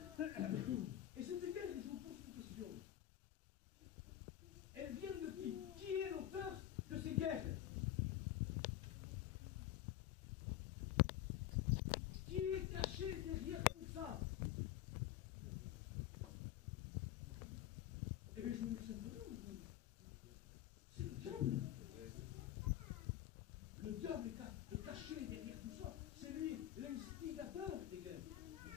Et cette guerre, je vous pose une question. Elle vient de qui? Qui est l'auteur de ces guerres? Qui est caché derrière tout ça? Eh bien, je vous dis simplement, c'est le diable. Le diable est caché derrière tout ça. C'est lui l'instigateur des guerres.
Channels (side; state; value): right; quieter; 12.8 dB